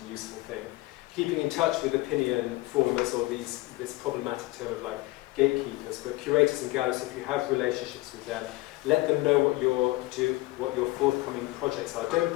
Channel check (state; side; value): quieter; right; 20.2 dB